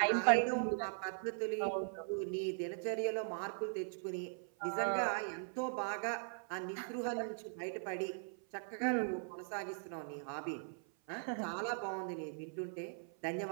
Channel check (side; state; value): left; silent; 51 dB below the other